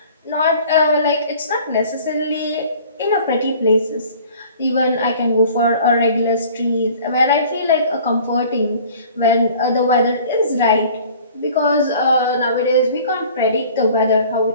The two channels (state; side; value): inverted; both; correlation -0.49